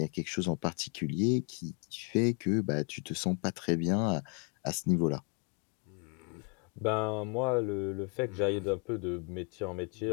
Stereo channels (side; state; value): right; quieter; 36.4 dB